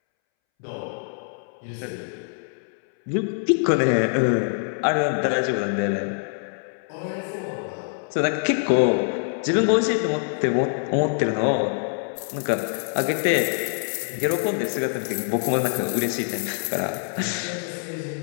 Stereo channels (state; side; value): silent; right; 62 dB below the other